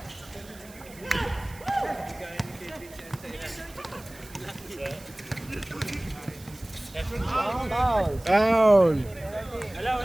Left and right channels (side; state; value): right; noise; hiss, 21 dB below the sound